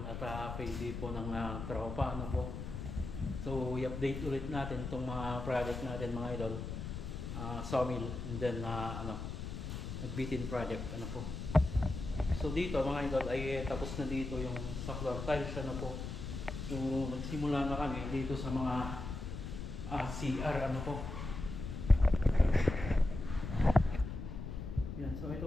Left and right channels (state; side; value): noise; left; rumble, 6 dB below the sound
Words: at payday po ng tropa, ano po. So i-update ulit natin itong mga project natin mga idol. Sawmill and then nagbitin project, ano po. So dito mga idol ay tapos na dito yung sa floor tiles, ano po. So nagsimula na kami dito sa mga CR, ano po. Yan, so ito